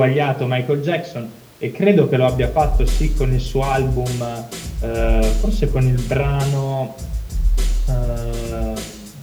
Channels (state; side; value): identical; both; correlation 1.00